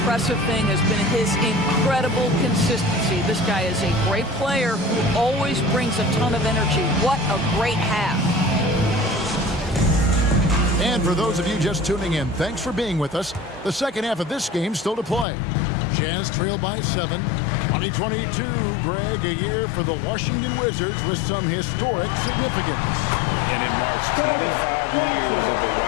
thing has been his incredible consistency. This guy is a great player who always brings a ton of energy. What a great half. And for those of you just tuning in, thanks for being with us. The second half of this game still to play. Jazz trail by 7. 2022, Greg, a year for the Washington Wizards with some historic significance. And it marks 25 years of the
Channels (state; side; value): drops out; right; at 15.2 s